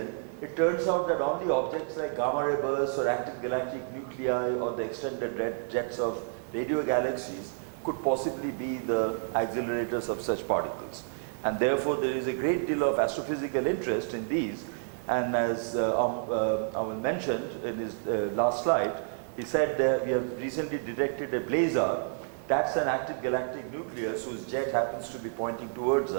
it turns out that only objects like gamma ray bursts or active galactic nuclei or the extended red jets of radio galaxies could possibly be the accelerators of such particles. And therefore, there is a great deal of astrophysical interest in these. And as Aman mentioned in his last slide, he said that we have recently detected a blazar. That's an active galactic nucleus whose jet happens to be pointing towards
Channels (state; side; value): silent; left; 58 dB below the other